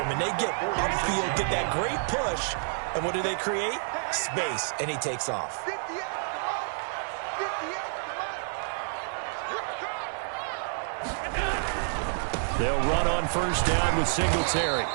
him, and they get upfield, get that great push, and what do they create? Space, and he takes off. 58 to the line. 58 to the line. Here I come. They'll run on first down with Singletary.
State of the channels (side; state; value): left; silent; digital silence